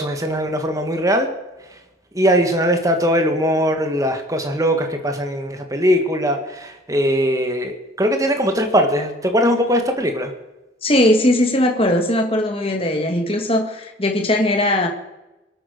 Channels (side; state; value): both; normal; correlation 0.50